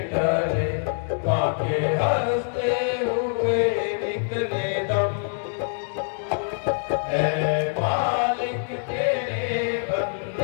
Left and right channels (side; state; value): right; silent; digital silence